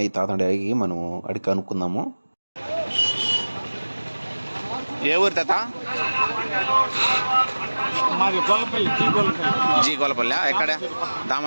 తాత అడిగి మనం అడిగి కనుక్కుందాము. ఏ ఊరు తాత? జీ గొల్లపల్లి. ఎక్కడ?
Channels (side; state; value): both; inverted; correlation -1.00